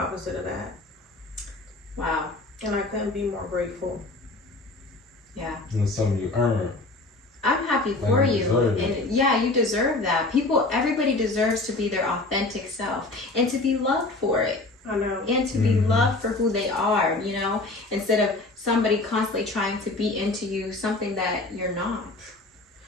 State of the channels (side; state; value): right; quieter; 3.1 dB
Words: of that. Wow. And I couldn't be more grateful. Yeah. And it's something you earn. I'm happy for you you. deserve it. And yeah, you deserve that. Everybody deserves to be their authentic self and to be loved for it. I know. And to be Mhm. loved for who they are, you know, instead of somebody constantly trying to be into you something that you're not.